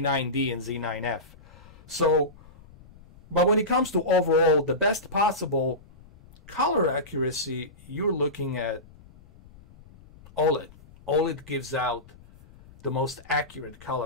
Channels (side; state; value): left; noise; rumble, 23 dB below the sound